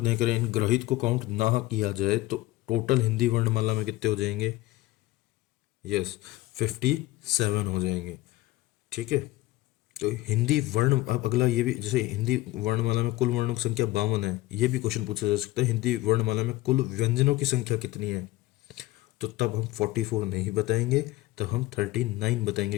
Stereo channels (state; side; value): quieter; right; 17.8 dB